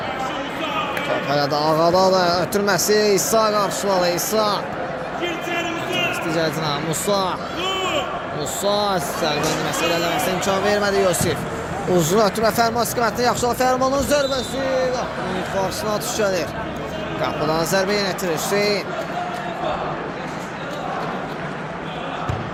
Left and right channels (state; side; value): identical; both; correlation 1.00